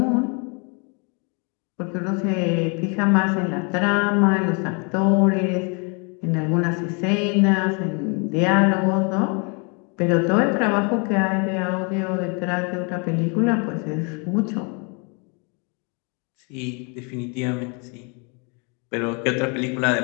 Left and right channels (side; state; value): right; quieter; 34.3 dB